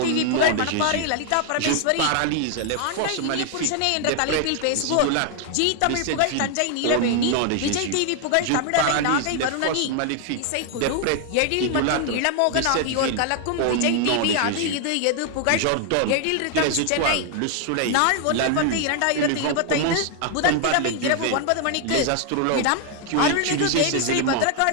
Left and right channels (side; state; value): both; different; correlation 0.00